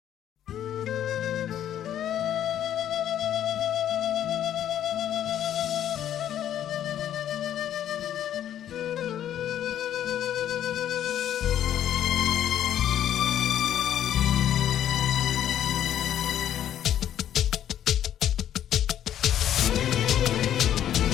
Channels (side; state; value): right; quieter; 10.7 dB